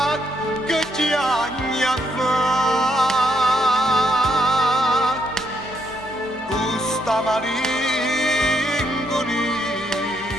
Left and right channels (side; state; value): both; normal; correlation 0.75